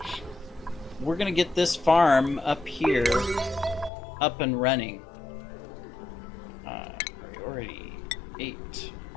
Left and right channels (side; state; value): right; drops out; at 3.9 s